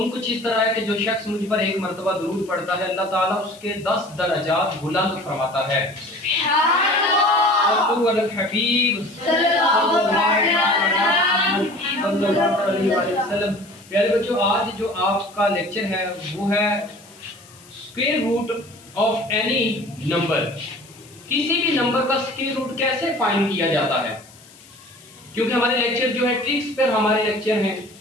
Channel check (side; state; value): left; noise; hiss, 24 dB below the sound